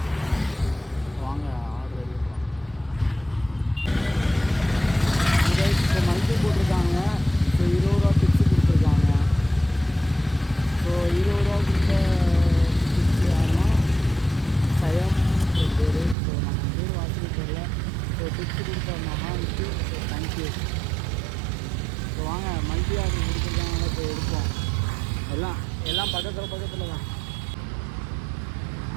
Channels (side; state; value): left; drops out; at 16.2 s